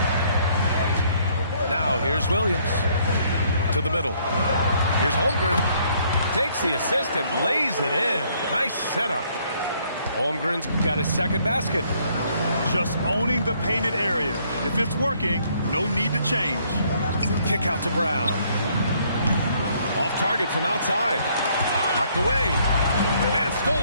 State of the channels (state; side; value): inverted; both; correlation -0.66